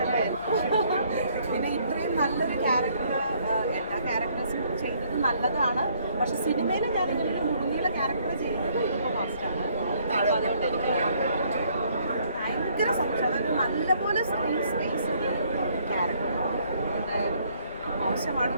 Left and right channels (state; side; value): inverted; both; correlation -0.65